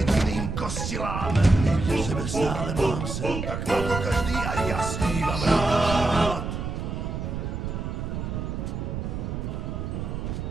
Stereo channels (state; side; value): noise; right; rumble, 4 dB below the sound